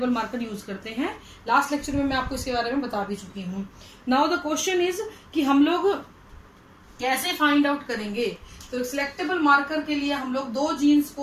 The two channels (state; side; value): identical; both; correlation 1.00